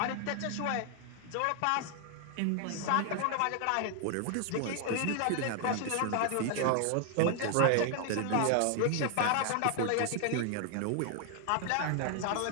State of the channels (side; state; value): both; different; correlation 0.00